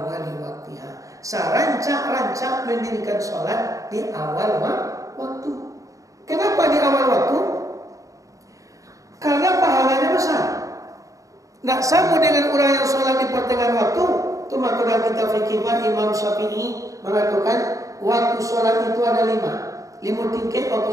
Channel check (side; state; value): left; late; 0.16 ms